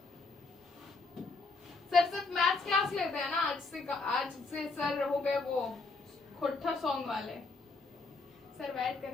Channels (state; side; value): quieter; right; 3.7 dB